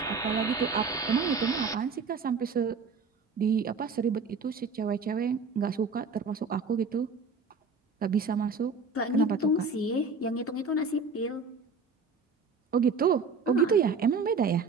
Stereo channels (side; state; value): left; quieter; 4.5 dB